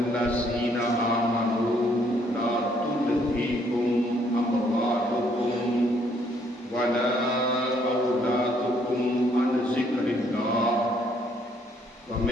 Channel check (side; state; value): both; normal; correlation 0.67